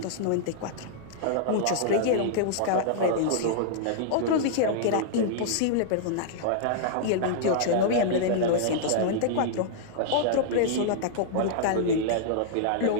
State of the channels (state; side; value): different; both; correlation -0.01